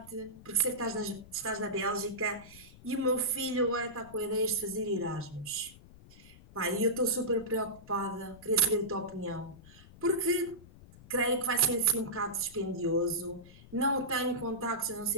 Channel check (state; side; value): noise; left; rumble, 21 dB below the sound